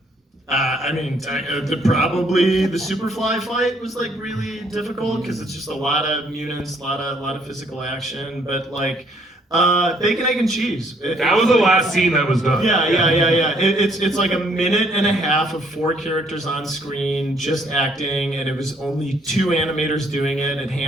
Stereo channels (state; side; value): normal; both; correlation 0.66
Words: Probably the Superfly fight was like really difficult because it's just a lot of mutants, a lot of physical action, but like. Bacon, egg, and cheese. That was the last scene that was done. Yeah. It's like a minute and a half of 4 characters on screen just acting, and it was only 2 animators doing it, and